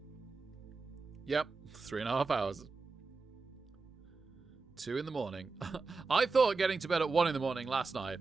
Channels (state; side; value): quieter; left; 4.2 dB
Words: Yep, 3.5 hours. 2 in the morning. I thought getting to bed at 1 in the morning last night